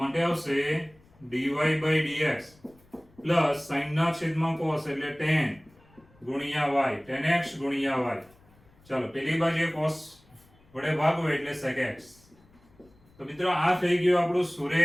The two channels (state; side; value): noise; left; rumble, 29 dB below the sound